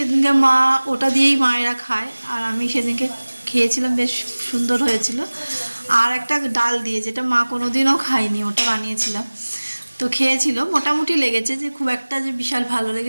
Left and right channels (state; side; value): inverted; both; correlation -1.00